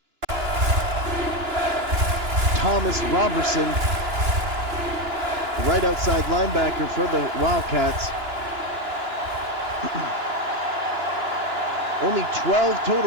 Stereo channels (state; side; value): late; left; 2.9 ms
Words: Thomas Robertson, the right outside linebacker for the Wildcats. Only 12